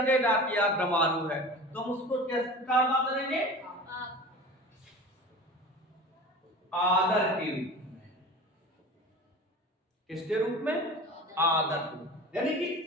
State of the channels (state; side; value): normal; both; correlation 0.36